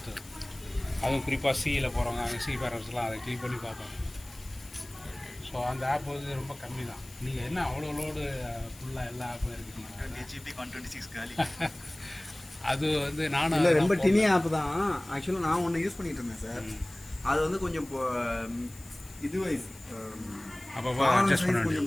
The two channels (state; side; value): noise; left; hiss, 20 dB below the sound